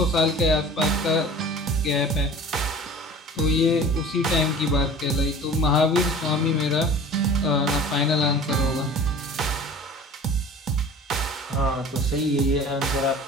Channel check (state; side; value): normal; both; correlation 0.42